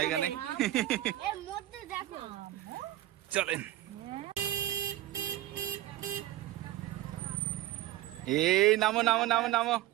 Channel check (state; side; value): quieter; left; 14.8 dB